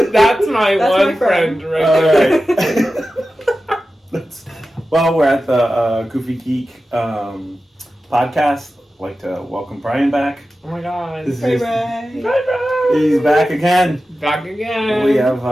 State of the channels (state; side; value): normal; both; correlation 0.94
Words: That's my one friend right there. Well, we're at the Goofy Geek podcast. I'd like to welcome Brian back. Oh my god. Hey, Brian. He's back again. Back again. We have